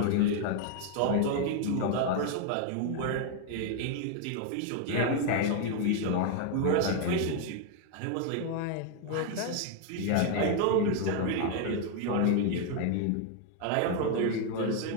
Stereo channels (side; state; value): both; different; correlation 0.01